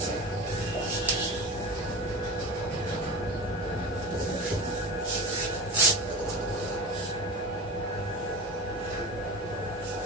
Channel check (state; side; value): normal; both; correlation 0.30